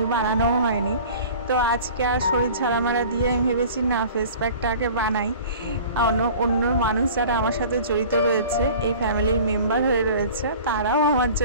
বানানোও হয়নি। তো আজকে আর শরীর ঝাড়ামারা দিয়ে আমি ভেবেছি না ফেস প্যাকটাকে বানাই। অন্য মানুষ যারা আমার সাথে জড়িত রয়েছে, এই ফ্যামিলির মেম্বার হয়ে রয়েছে, তারাও আমার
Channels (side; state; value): both; inverted; correlation -0.43